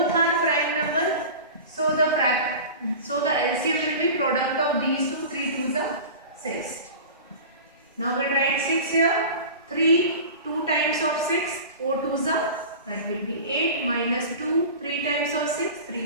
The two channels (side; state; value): both; inverted; correlation -0.35